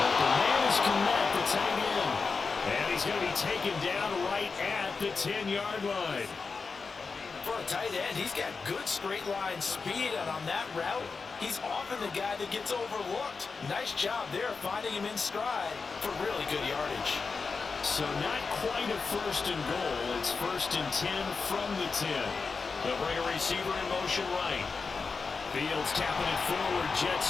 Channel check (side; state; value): right; quieter; 4.7 dB